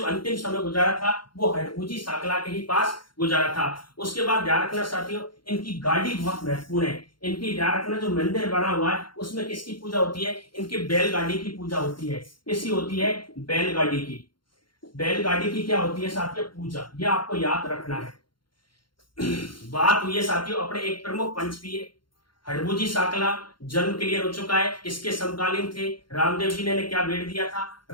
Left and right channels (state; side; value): late; right; 0.72 ms